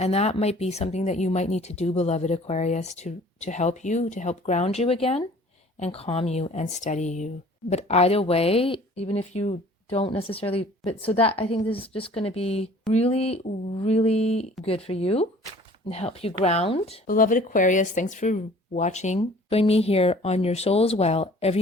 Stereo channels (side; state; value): both; normal; correlation 0.50